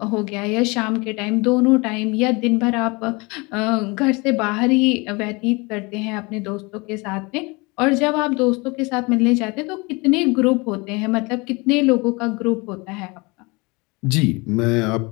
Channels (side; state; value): right; quieter; 26.6 dB